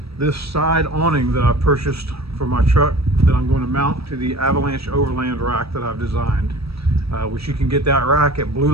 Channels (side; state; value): left; late; 0.77 ms